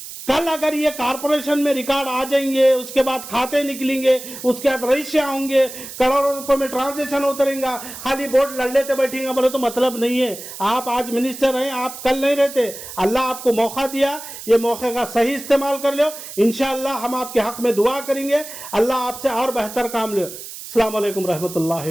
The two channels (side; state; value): right; noise; hiss, 12 dB below the sound